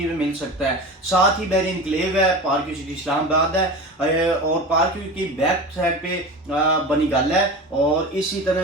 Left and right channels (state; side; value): normal; both; correlation 0.31